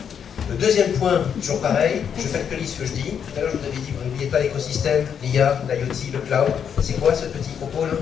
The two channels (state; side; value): quieter; right; 7.8 dB